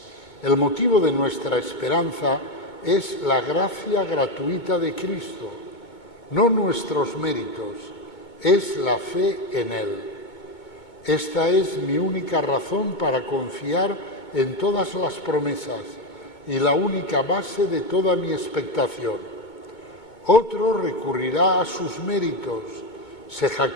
El motivo de nuestra esperanza es la gracia gratuita de Cristo, no nuestros méritos, es la fe en Él. Esta es mi única razón para confiar en todas las promesas y la única base de toda mi expectación. Otro recurrirá a sus méritos, se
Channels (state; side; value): late; right; 2.2 ms